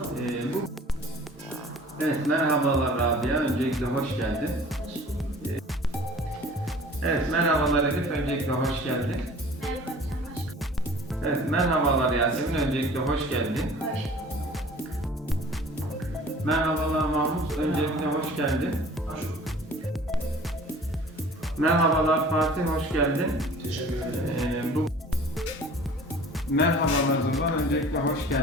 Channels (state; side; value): normal; both; correlation 0.46